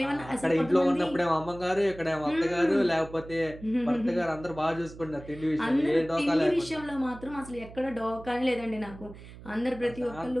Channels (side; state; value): right; noise; hum, 17 dB below the sound